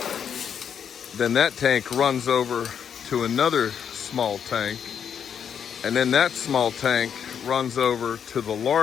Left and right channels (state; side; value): quieter; right; 8.0 dB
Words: Then that tank runs over to another small tank. And then that small tank runs over to the